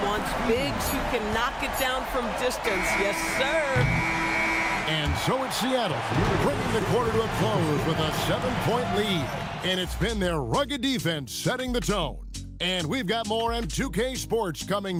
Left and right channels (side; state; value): both; identical; correlation 1.00